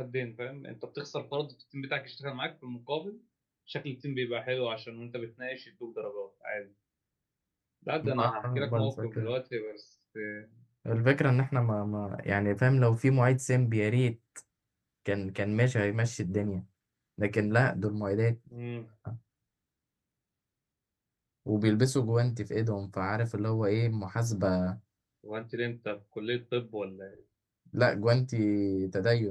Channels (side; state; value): both; identical; correlation 1.00